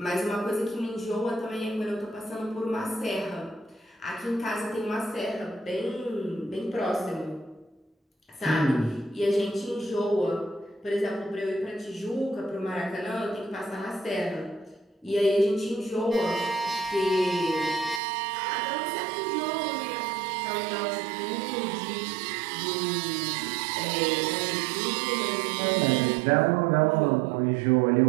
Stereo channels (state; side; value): drops out; left; at 18.0 s